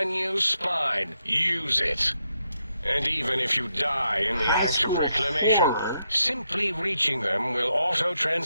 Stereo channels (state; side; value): inverted; both; correlation -0.81